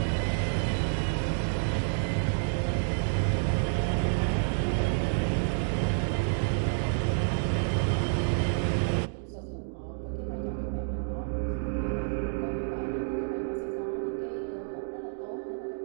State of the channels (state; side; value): silent; left; digital silence